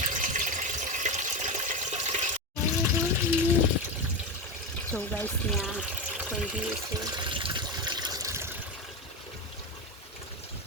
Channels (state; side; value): normal; both; correlation 0.17